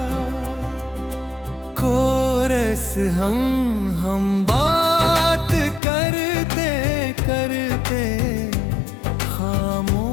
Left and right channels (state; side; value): drops out; right; at 5.8 s